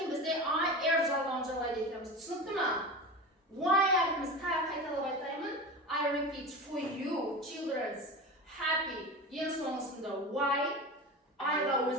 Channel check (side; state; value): both; normal; correlation 0.28